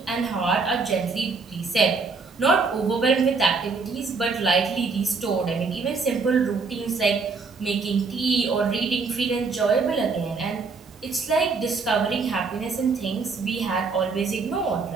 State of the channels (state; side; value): quieter; left; 4.6 dB